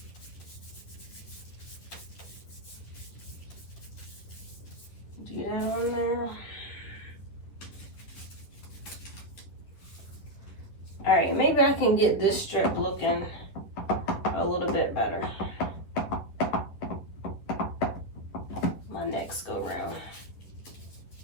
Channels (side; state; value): right; late; 10 ms